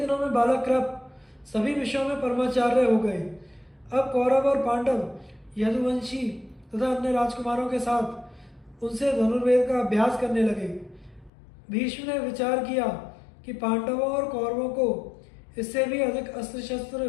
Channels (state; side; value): drops out; right; at 11.3 s